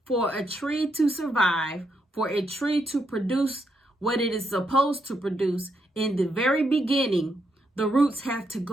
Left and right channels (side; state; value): both; normal; correlation 0.79